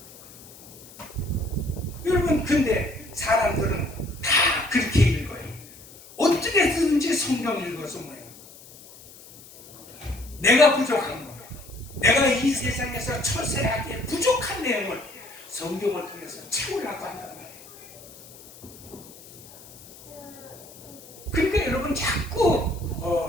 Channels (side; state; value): left; noise; hiss, 20 dB below the sound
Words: 여러분, 근데 사람들은 다 그렇게 읽어요. 어떻게든지 성경 읽어서 뭐예요? 내가 부족한 거, 내가 이 세상에서 처세하기에 부족한 내용을 성경을 통해서 채우려고 한단 말이에요. 그러니까 여러분, 자꾸